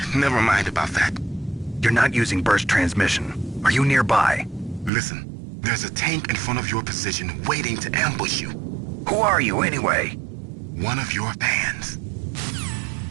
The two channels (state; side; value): drops out; left; at 4.9 s